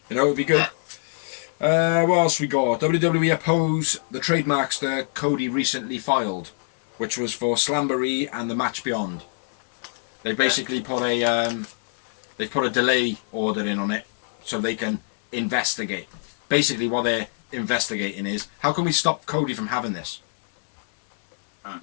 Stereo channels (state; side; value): silent; right; digital silence